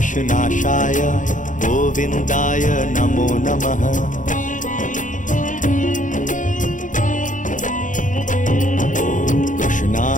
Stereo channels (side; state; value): right; late; 0.37 ms